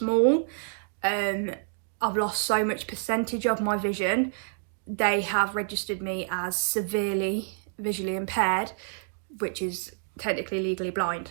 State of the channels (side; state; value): left; silent; digital silence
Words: I've lost so much percentage of my vision, they have registered me as severely visually impaired, which is technically legally blind.